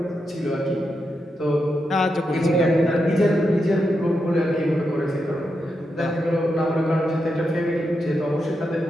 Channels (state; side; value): normal; both; correlation 0.85